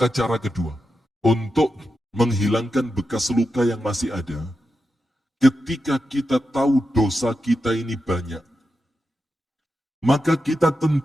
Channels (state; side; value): normal; both; correlation 0.89